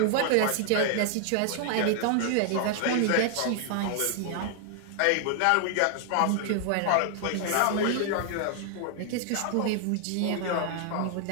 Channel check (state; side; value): different; both; correlation 0.00